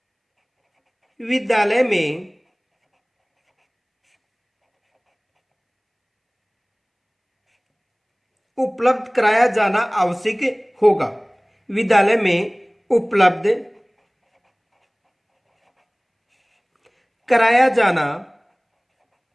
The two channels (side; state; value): both; identical; correlation 1.00